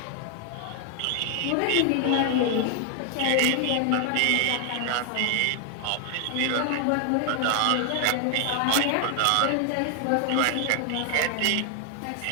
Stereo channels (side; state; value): both; different; correlation 0.00